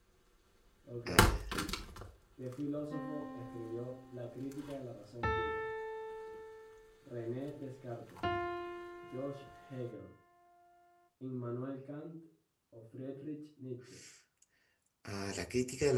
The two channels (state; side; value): identical; both; correlation 1.00